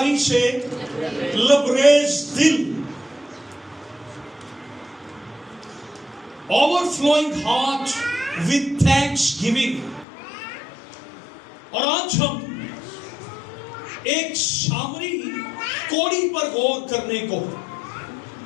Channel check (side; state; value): right; drops out; at 10.1 s